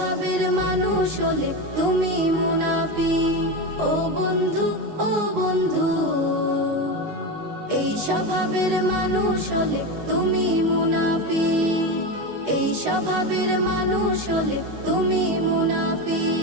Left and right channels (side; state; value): left; late; 19 ms